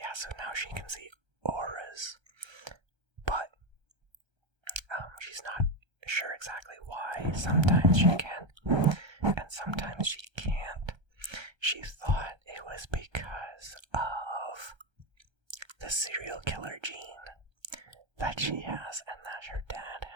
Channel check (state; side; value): late; left; 1.3 ms